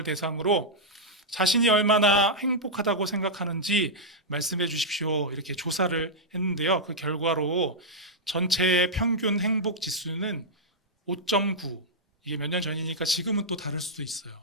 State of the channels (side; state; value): both; normal; correlation -0.06